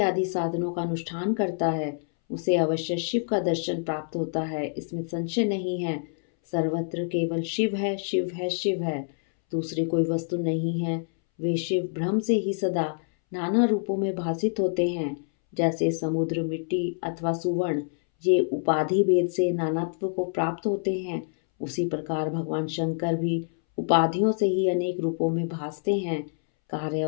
साधनों का अनुष्ठान करता है, उसे अवश्य शिव का दर्शन प्राप्त होता है, इसमें संशय नहीं है। सर्वत्र केवल शिव है, शिव है, शिव है, दूसरी कोई वस्तु नहीं है। वे शिव भ्रम से ही सदा नाना रूपों में भासित होते हैं। जैसे समुद्र, मिट्टी अथवा सुवर्ण ये उपाधि भेद से नानात्व को प्राप्त होते हैं, उसी प्रकार भगवान शंकर भी उपाधियों से ही अनेक रूपों में भासते हैं। कार्य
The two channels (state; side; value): silent; right; 60 dB below the other